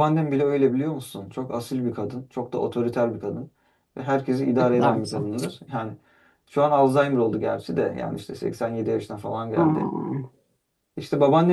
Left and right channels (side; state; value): both; identical; correlation 1.00